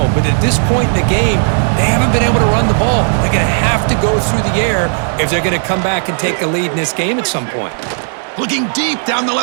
But at this point in the game, they haven't been able to run the ball. They're going to have to go through the air if they're going to come back and take a lead in this game at some point. Looking deep down the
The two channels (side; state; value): left; silent; digital silence